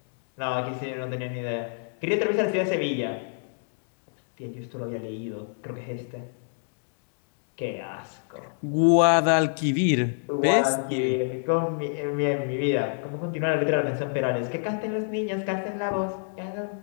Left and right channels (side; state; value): right; silent; digital silence